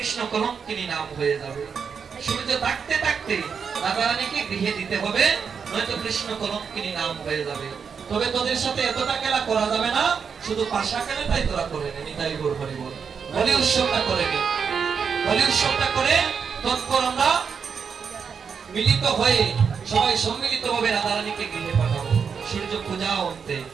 কলঙ্কিনী নাম হয়ে যাবে। সূর্য থাকতে থাকতে রাধারানীকে গৃহে দিতে হবে, নয়তো কৃষ্ণ কলঙ্কিনী নাম হয়ে যাবে। তবে তোদের সাথে এতটা খেলা করা যাবে না, শুধু পাশা খেলাটাই তোরা করে নে। নিতাই গৌর হরি বল। বলি উৎসবটা করে নে, বলি উৎসবটা করে তৎপর আমরা মিলিত হয়ে সবাই সম্মিলিত ভাবে রাধারানীকে গৃহে পাঠাবো। সূর্য পূজা অন্তে,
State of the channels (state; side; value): quieter; left; 6.3 dB